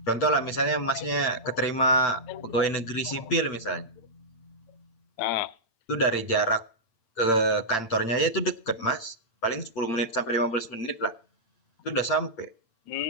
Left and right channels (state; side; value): late; right; 8.8 ms